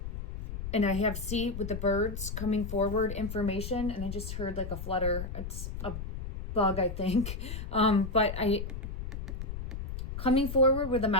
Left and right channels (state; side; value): noise; left; rumble, 6 dB below the sound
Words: and I have with the birds coming forward information, and I just heard like a flutter. It's a bug, I think. But I coming forward with a